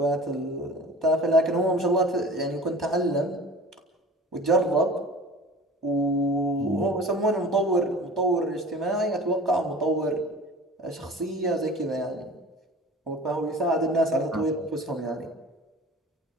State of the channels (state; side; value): normal; both; correlation 0.41